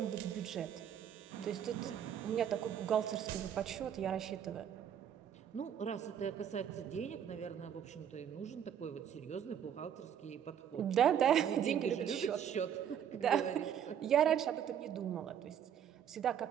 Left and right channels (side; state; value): left; quieter; 9.0 dB